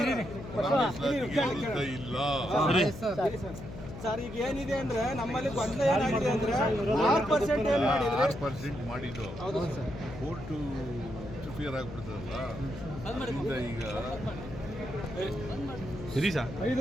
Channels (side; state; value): left; noise; hum, 11 dB below the sound